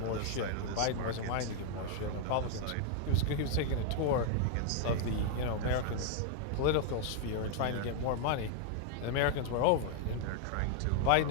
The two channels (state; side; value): different; both; correlation 0.00